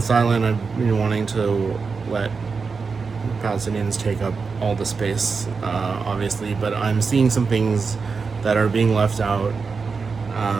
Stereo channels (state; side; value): quieter; left; 4.9 dB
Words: I've been wanting to let Palestinians take up all the space, obviously, but I'm seeing some things that are being left out